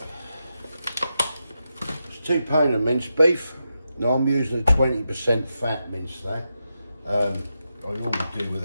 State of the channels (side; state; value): both; inverted; correlation -0.87